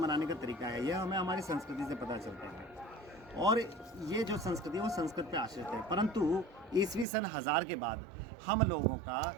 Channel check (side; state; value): left; drops out; at 7.1 s